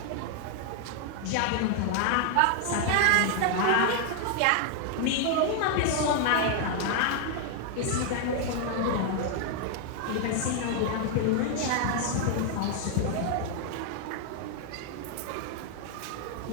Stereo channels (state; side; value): different; both; correlation 0.00